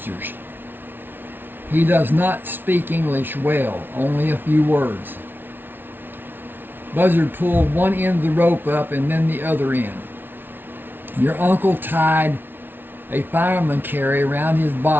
He does not speak English well, only a few words. Buzzard pulled one end of the rope up and then the other end. Your uncle tied a fireman carry around his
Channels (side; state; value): left; late; 0.099 ms